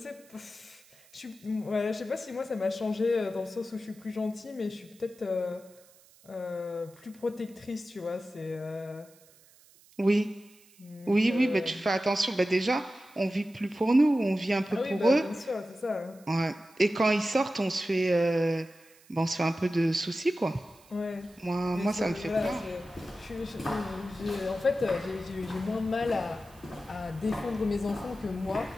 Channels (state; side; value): noise; right; hiss, 27 dB below the sound